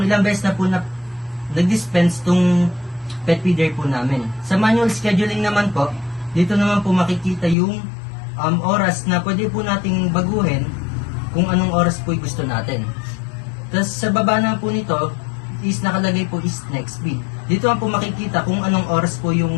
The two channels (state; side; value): drops out; right; at 7.6 s